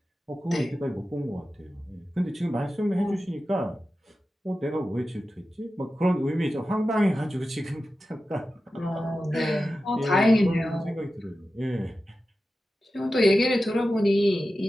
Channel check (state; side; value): normal; both; correlation 0.93